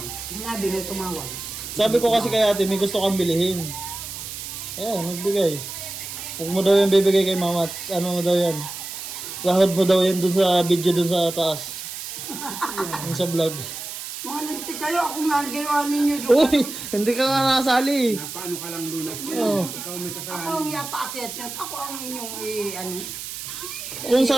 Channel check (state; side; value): noise; right; hiss, 8 dB below the sound